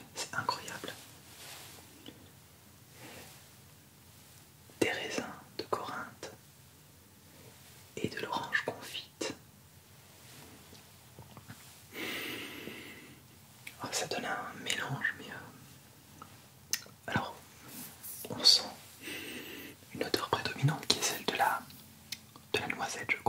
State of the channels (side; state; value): both; identical; correlation 1.00